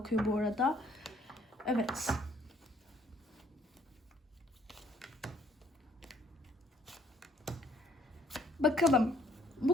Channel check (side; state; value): both; normal; correlation 0.63